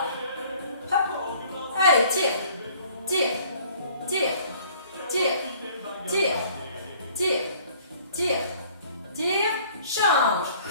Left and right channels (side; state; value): both; inverted; correlation -0.55